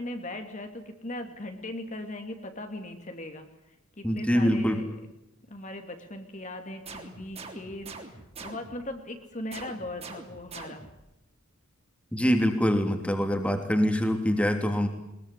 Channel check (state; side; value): normal; both; correlation 0.88